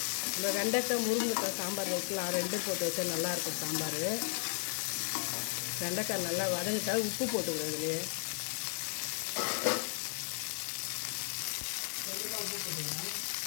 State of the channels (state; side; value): silent; right; 55 dB below the other